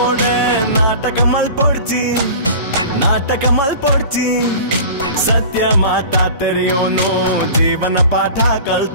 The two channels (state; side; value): inverted; both; correlation -0.39